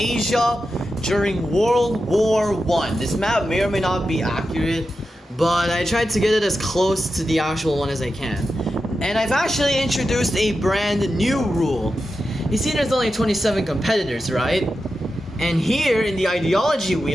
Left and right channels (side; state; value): both; normal; correlation 0.90